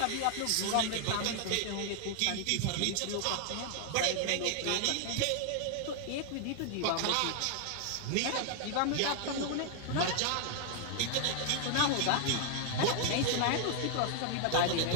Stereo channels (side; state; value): both; different; correlation 0.00